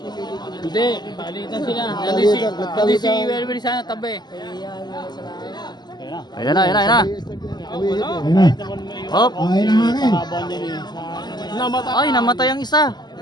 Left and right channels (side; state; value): right; late; 0.21 ms